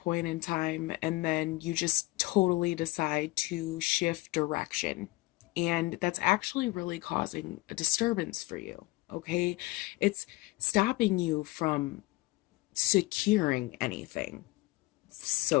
in time, and then you just totally decide to shift direction. And that's actually really causing a disturbance for you. Okay, it's stopping you from securing anything,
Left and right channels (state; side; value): quieter; right; 20.9 dB